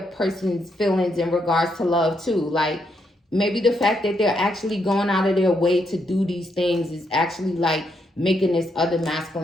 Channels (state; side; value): normal; both; correlation 0.78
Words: feelings in regards to love too, like maybe the fact that they're actually going out of their way to do these things is actually like making this other